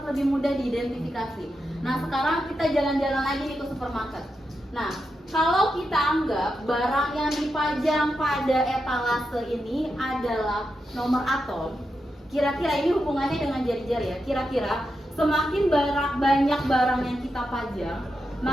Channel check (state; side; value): normal; both; correlation 0.87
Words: lebih mudah diidentifikasi. Nah, sekarang kita jalan-jalan lagi nih ke supermarket. Nah, kalau kita anggap barang yang dipajang pada etalase ini adalah nomor atom, kira-kira ini hubungannya dengan jari-jari ya. Kira-kira semakin banyak barang yang kita pajang,